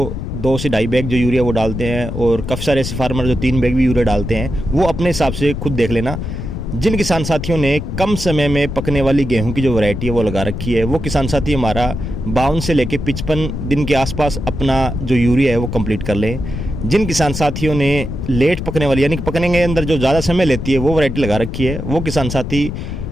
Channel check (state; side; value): noise; left; rumble, 5 dB below the sound